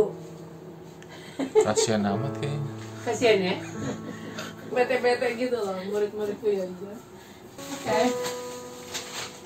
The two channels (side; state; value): both; identical; correlation 1.00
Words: Kasian amat kayaknya. Kasian ya. Bete gitu loh murid-muridku ya aja. Oke.